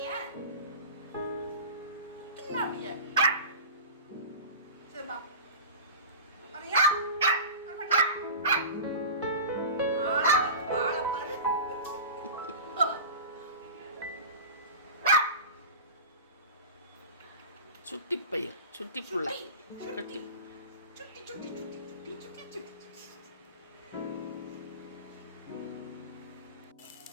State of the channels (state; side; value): inverted; both; correlation -0.33